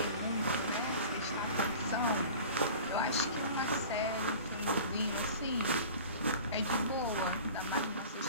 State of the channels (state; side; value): inverted; both; correlation -0.40